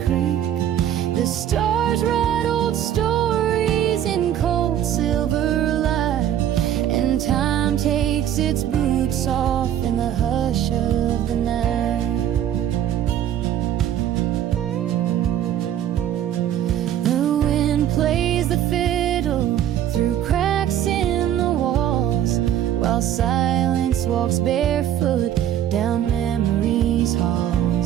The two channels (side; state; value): left; quieter; 10.7 dB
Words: creak. The stars write old stories in cold silver light, and time takes its boots off in the hush of the night. The wind plays the fiddle through cracks in the walls, while silence walks barefoot down memory's